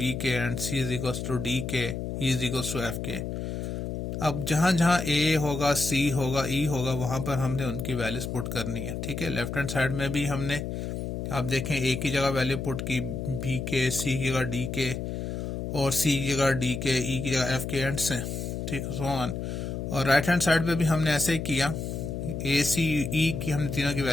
K and C is equals to D K, E is equals to F K. अब जहां जहां ए होगा, सी होगा, ई होगा, वहां पर हमने उनकी वैल्यूज पुट करनी है, ठीक है। लेफ्ट हैंड साइड में भी हमने, आप देखें, ए की जगह वैल्यू पुट की बी के, सी की जगह डी के, और सी की जगह डी के, ई की जगह एफ के, एंड से, ठीक है, सो ऑन। और राइट हैंड साइड पे भी हमने ऐसे ही किया, ए सी ई की हमने तीनों की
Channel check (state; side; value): noise; left; hum, 4 dB below the sound